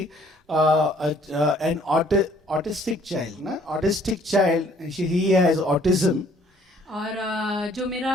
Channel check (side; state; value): both; normal; correlation 0.60